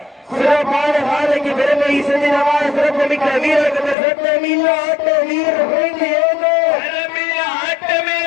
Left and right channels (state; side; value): drops out; right; at 4.0 s